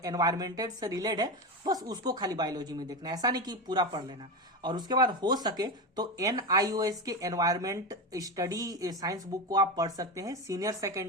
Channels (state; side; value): normal; both; correlation 0.18